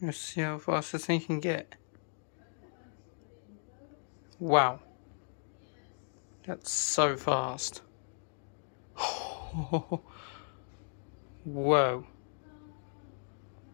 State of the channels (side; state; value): right; silent; digital silence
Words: Let's see how fast this thing can get. Wow. That's so fast. Whoa.